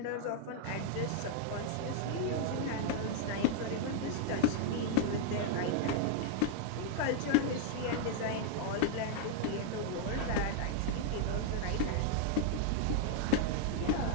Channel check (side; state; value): both; different; correlation 0.00